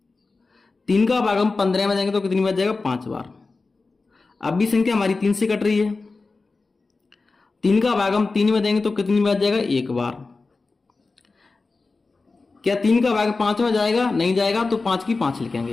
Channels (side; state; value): right; quieter; 3.8 dB